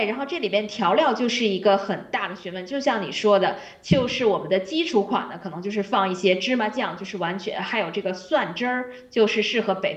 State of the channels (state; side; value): identical; both; correlation 1.00